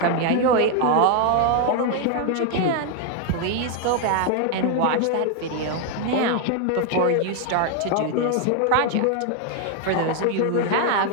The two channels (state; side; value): different; both; correlation 0.00